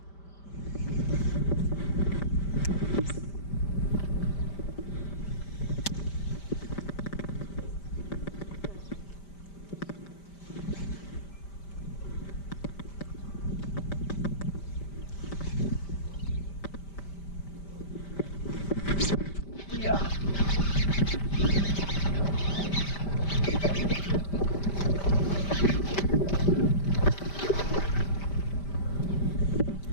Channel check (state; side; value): late; right; 5.1 ms